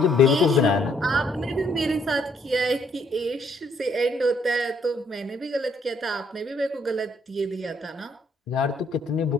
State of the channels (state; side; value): normal; both; correlation 0.69